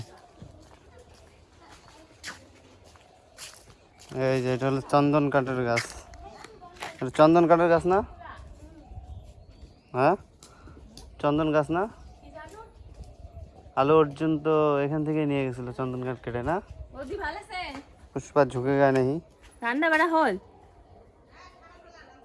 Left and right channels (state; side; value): identical; both; correlation 1.00